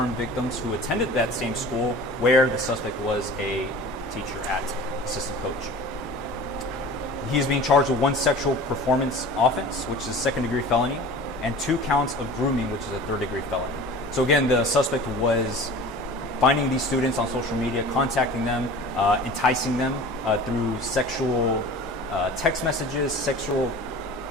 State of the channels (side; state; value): both; normal; correlation 0.40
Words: victims who attended that same school where the suspect was a teacher at, assistant coach. He is being charged with 1 sexual performance offense, which is a 2nd-degree felony, and 2 counts of grooming, which is a 3rd-degree felony. So again, the suspect was finding these students on social media, contacting them, enticing them through sexual text messages, sexual